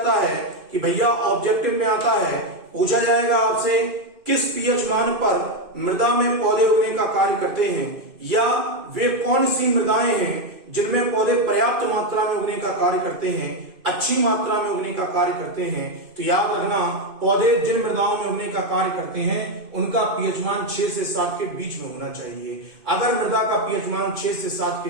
है कि भैया ऑब्जेक्टिव में आता है, पूछा जाएगा आपसे किस पीएच मान पर मृदा में पौधे उगने का कार्य करते हैं, या वे कौन सी मृदाएं हैं जिनमें पौधे पर्याप्त मात्रा में उगने का कार्य करते हैं, अच्छी मात्रा में उगने का कार्य करते हैं। तो याद रखना, पौधे जिन मृदाओं में उगने का कार्य करते हैं उनका पीएच मान 6 से 7 के बीच में होना चाहिए। अगर मृदा का पीएच मान 6 से 7 के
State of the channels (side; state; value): left; late; 2.5 ms